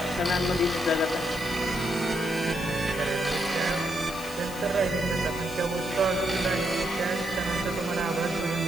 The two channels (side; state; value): left; noise; hiss, 14 dB below the sound